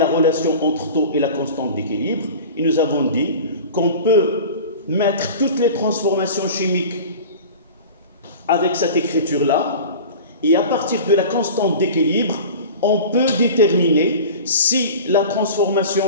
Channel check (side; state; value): both; inverted; correlation -0.36